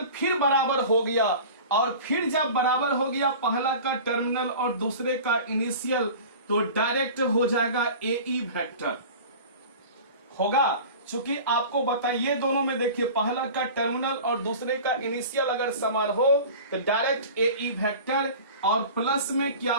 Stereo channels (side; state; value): both; inverted; correlation -0.38